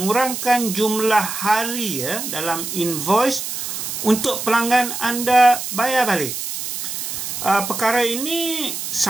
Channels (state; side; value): noise; right; hiss, 5 dB below the sound